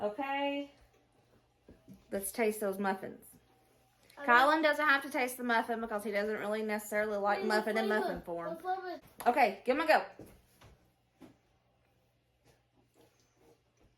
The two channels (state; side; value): identical; both; correlation 1.00